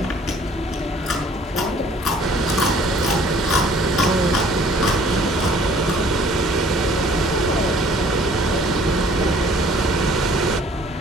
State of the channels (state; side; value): normal; both; correlation 0.56